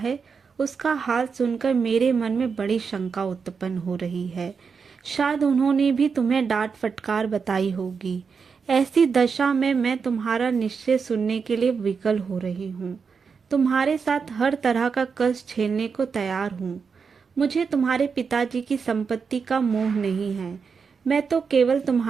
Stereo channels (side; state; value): left; quieter; 5.7 dB